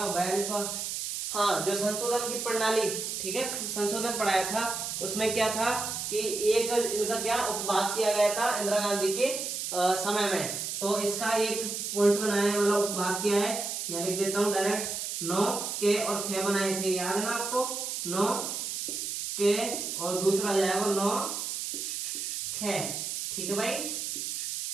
42वां, हाँ, जो संशोधन की प्रणाली, ठीक है, संशोधन पढ़ाया था, उसमें क्या था कि एक इनका क्या उपभाग किया गया था इंदिरा गांधी के समय में, तो इसका एक पॉइंट बनाया है, मतलब उपभाग किया है, यहाँ लिख देता हूँ डायरेक्ट, 9 के और ख बनाए थे, याद है ना आपको, 9 के और दूसरा जाएगा 9 ख, ठीक है भाई।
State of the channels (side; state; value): right; noise; hiss, 4 dB below the sound